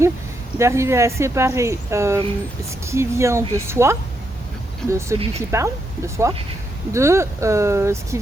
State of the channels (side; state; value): both; normal; correlation 0.80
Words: d'arriver à séparer ce qui vient de soi, de celui qui parle, de soi, de ce qui